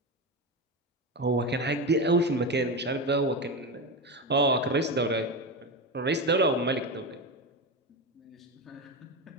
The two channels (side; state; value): both; normal; correlation 0.17